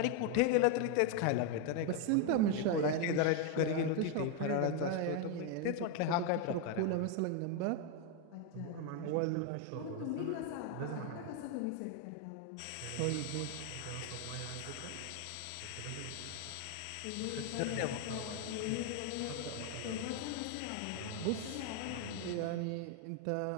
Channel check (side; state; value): both; different; correlation 0.01